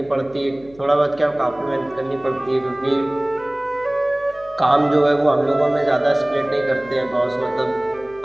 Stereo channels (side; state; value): left; noise; hum, 25 dB below the sound